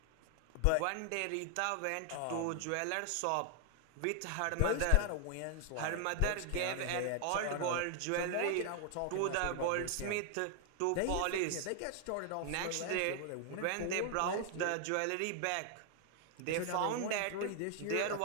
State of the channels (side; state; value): both; different; correlation 0.00